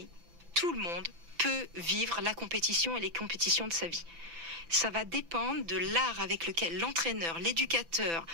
tout le monde peut vivre la compétition et les compétitions de sa vie. Ça va dépendre de l'art avec lequel l'entraîneur, l'éducateur,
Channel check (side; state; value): left; late; 6.0 ms